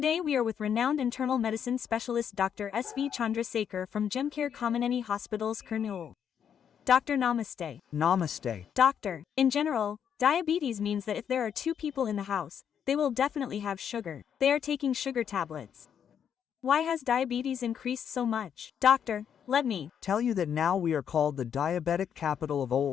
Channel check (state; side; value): quieter; right; 8.3 dB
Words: we are with renowned internal medicine specialist Dr. S.V. Chandrasekhar from Gemcare Kameneni Hospitals, Kurnool. Doctor, namaste. Namaste. Doctor, in general, diabetes means that if there are two people in the house, they will definitely have sugar. They are taking sugar tablets. Why has diabetes increased so much? Doctor, let me Tell you that now we are called the diabetic capital of